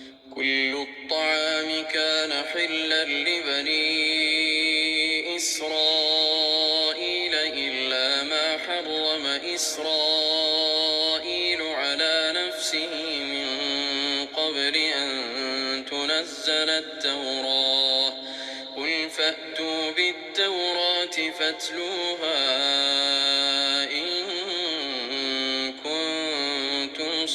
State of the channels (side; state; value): both; identical; correlation 1.00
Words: كل الطعام كان حلا لبني إسرائيل إلا ما حرم إسرائيل على نفسه من قبل أن تنزل التوراة. قل فأتوا بالتوراة فاتلوها إن كنتم